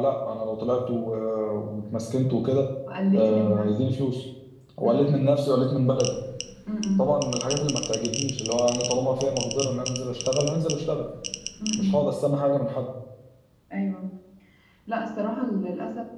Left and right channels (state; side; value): identical; both; correlation 1.00